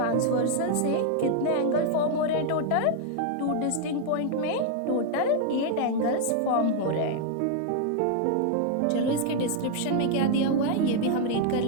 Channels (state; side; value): different; both; correlation 0.00